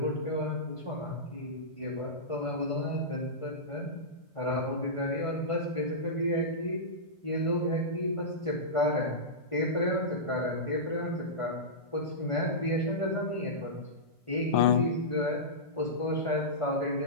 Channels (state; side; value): late; right; 1.5 ms